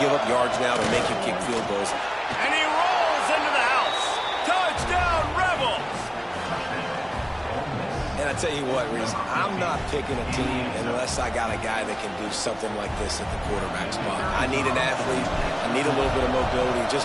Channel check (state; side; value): identical; both; correlation 1.00